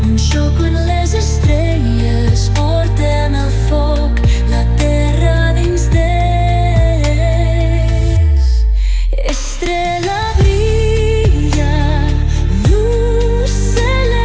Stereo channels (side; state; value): both; identical; correlation 1.00